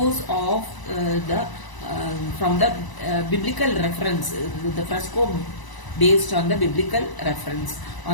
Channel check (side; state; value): right; late; 1.0 ms